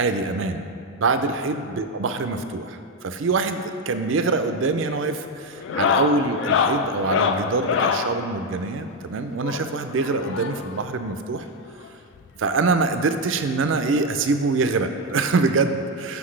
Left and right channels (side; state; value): both; normal; correlation 0.08